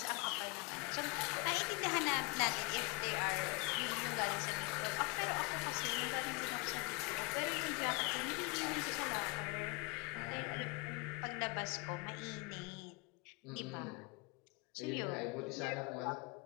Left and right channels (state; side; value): quieter; right; 28.1 dB